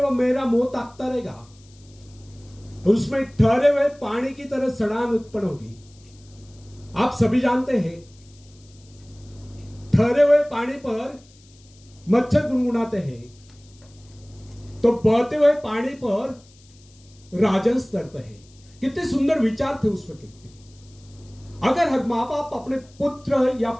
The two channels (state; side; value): noise; left; hiss, 28 dB below the sound